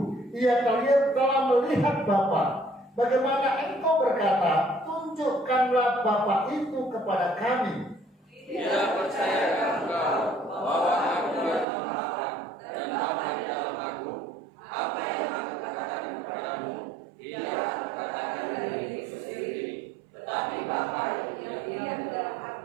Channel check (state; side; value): drops out; left; at 11.7 s